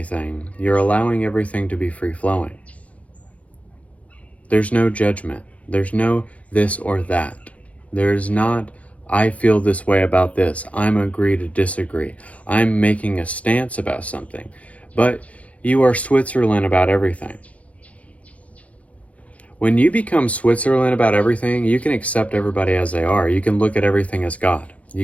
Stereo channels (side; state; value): right; late; 0.065 ms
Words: you're allowing everything to be free-flowing. There's no judgment. There's no this or that. There's not, I feel this way about this. I'm agree to disagree. I'm making a stance about something. But you are Switzerland about everything. When you become Switzerland about everything, you can accept everybody as they are. You can look at everything as God.